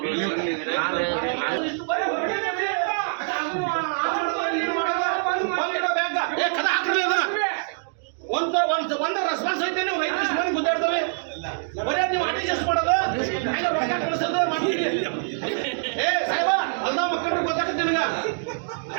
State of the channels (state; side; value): silent; left; digital silence